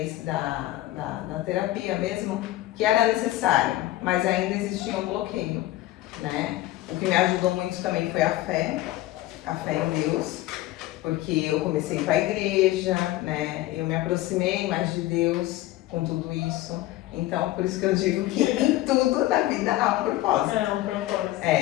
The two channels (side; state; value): right; quieter; 16.1 dB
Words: da terapia mesmo que era necessário, mas ainda existia um bloqueio, né? O que me ajudou muito também foi a fé em Deus. Porque eu comecei a ir para a igreja, né? Eu me aproximei mais de Deus com tudo isso. Então, por isso que eu digo que em tudo na vida há um propósito. É um propósito.